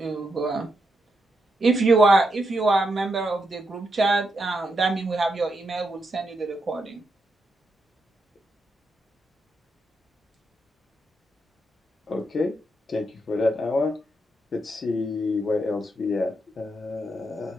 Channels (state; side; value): normal; both; correlation 0.82